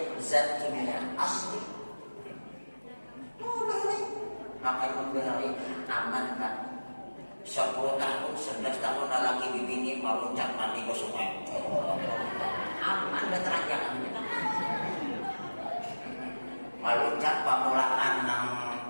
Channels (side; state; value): both; inverted; correlation -1.00